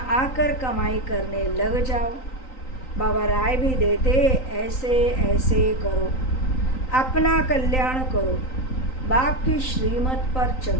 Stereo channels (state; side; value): late; right; 3.9 ms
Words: आकर कमाई करने लग जाओ। बाबा राय भी देते ऐसे ऐसे करो, अपना कल्याण करो, बाप की श्रीमत पर